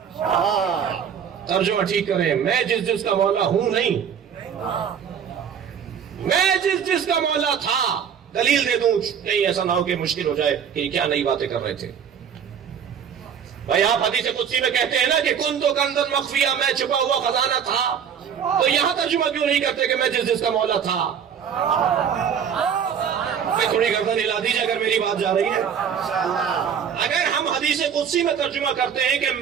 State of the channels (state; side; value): quieter; left; 7.9 dB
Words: ترجمہ ٹھیک کریں، میں جس کا مولا ہوں نہیں، میں جس کا مولا تھا۔ دلیل دے دوں کہیں ایسا نہ ہو کہ مشکل ہو جائے کہ کیا نئی باتیں کر رہے تھے۔ بھائی آپ حدیث قدسی میں کہتے ہیں نا کہ کنت کنزا مخفیہ، میں چھپا ہوا خزانہ تھا، تو یہاں ترجمہ کیوں نہیں کرتے کہ میں جس کا مولا تھا؟ میں تھوڑی گردن ہلا دیجیے اگر میری بات جا رہی ہے۔ اگر ہم حدیث قدسی میں ترجمہ کرتے ہیں کہ